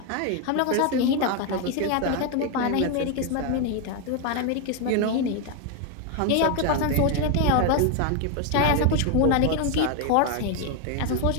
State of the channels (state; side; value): different; both; correlation 0.01